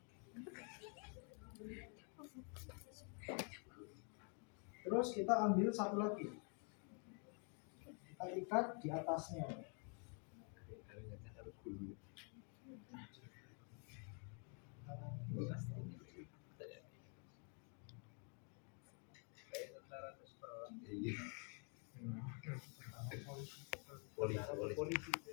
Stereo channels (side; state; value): right; quieter; 39.5 dB